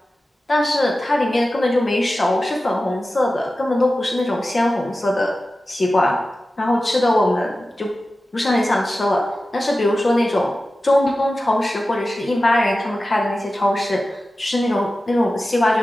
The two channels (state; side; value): normal; both; correlation 0.94